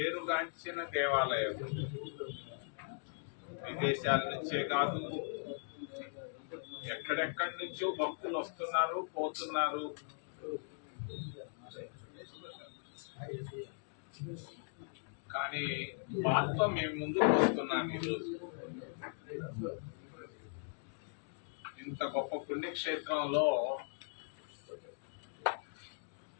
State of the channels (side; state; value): right; silent; digital silence